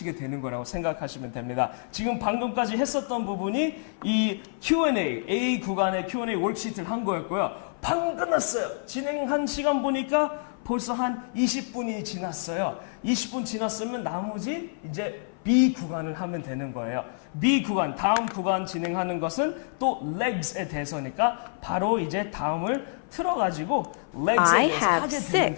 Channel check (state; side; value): silent; right; 55 dB below the other